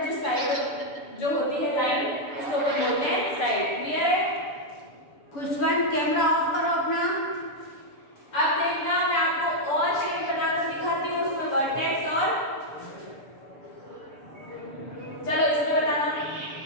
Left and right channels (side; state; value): right; late; 6.9 ms